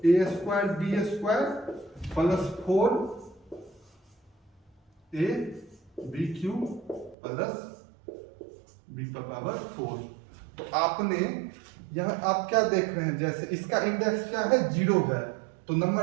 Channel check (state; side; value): drops out; left; at 7.2 s